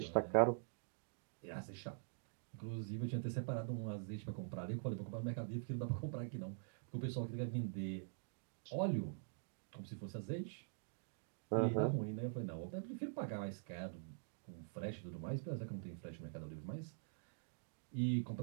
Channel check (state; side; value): silent; left; digital silence